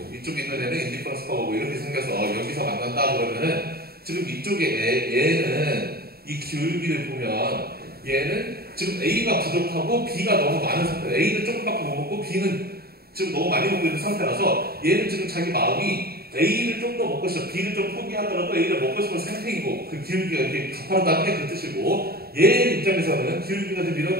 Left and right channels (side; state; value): left; late; 0.45 ms